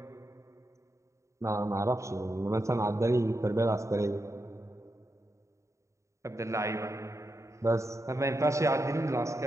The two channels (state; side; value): late; left; 0.14 ms